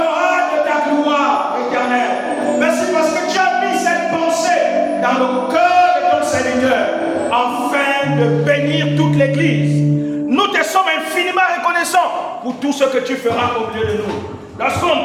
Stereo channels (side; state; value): both; identical; correlation 1.00